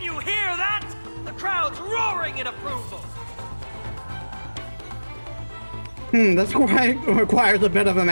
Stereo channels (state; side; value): inverted; both; correlation -1.00